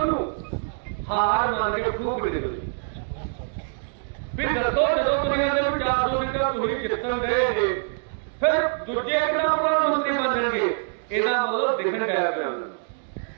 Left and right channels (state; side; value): silent; left; 62 dB below the other